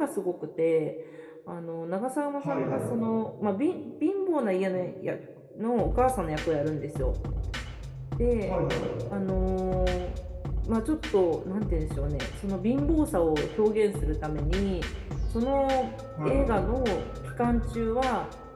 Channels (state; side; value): identical; both; correlation 1.00